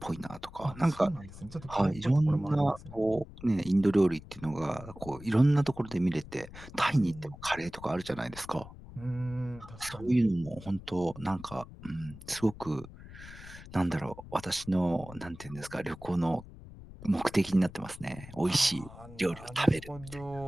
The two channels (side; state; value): left; noise; rumble, 16 dB below the sound